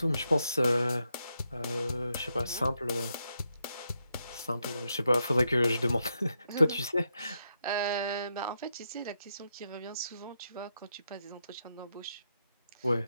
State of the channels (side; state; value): both; inverted; correlation -0.82